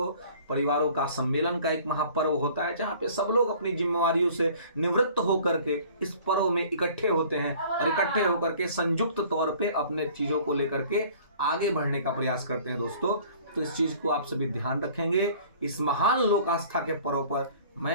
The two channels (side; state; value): both; inverted; correlation -0.50